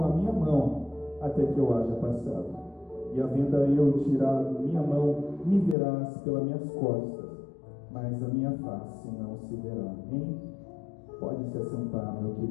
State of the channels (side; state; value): right; drops out; at 5.8 s